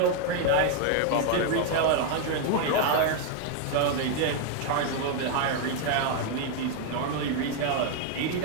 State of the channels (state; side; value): different; both; correlation 0.00